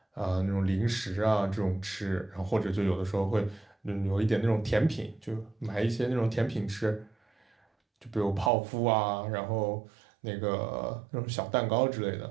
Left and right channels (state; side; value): drops out; left; at 8.5 s